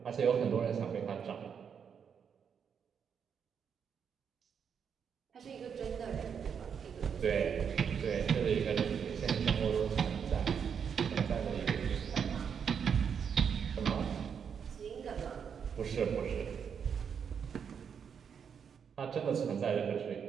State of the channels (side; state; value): left; quieter; 7.2 dB